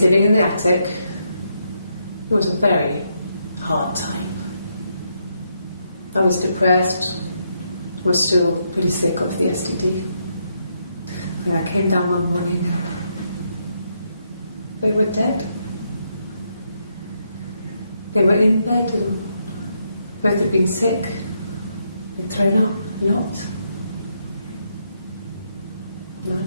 living in the attic. It was a very hard time. I was depressed, was still pretty sick of the STD. When I came down one morning, they were dead. They were in bed and both had been sick. They'd thrown up a lot. And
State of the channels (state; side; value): inverted; both; correlation -0.78